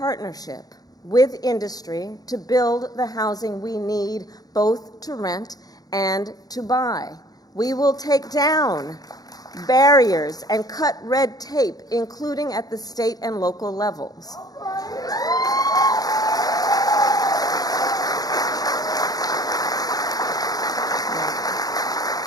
with industry to build the housing we need, both to rent and to buy. We will take down barriers and cut red tape, including at the state and local levels.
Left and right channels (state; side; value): late; right; 0.18 ms